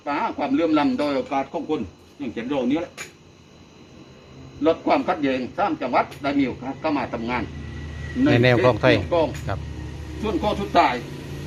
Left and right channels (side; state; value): both; identical; correlation 1.00